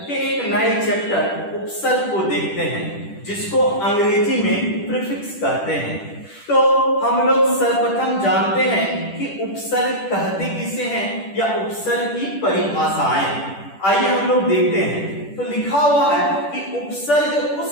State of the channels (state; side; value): late; right; 10 ms